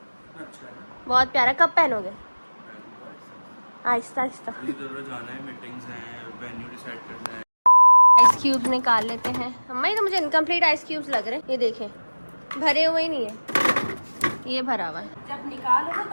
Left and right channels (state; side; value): inverted; both; correlation -1.00